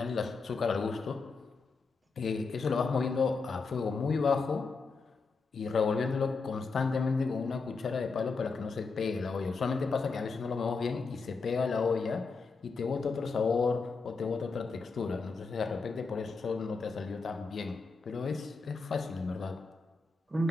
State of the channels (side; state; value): right; quieter; 4.4 dB